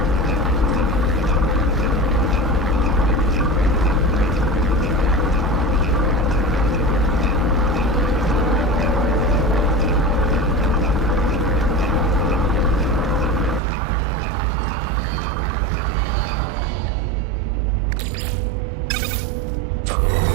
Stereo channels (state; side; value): drops out; left; at 13.6 s